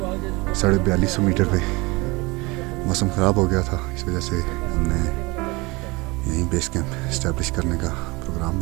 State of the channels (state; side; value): quieter; left; 24.4 dB